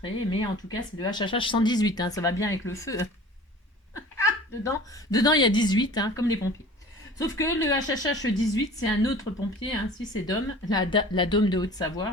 mais en tout cas, c'est le HHH 118, hein, ça va bien avec le feu. dedans, il y a 18, hein, comme les pompiers. Sauf que le HHH 18, c'est un autre pompier, hein. Si c'est Dom, la Dom de Haute-Savoie,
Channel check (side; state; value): both; normal; correlation 0.43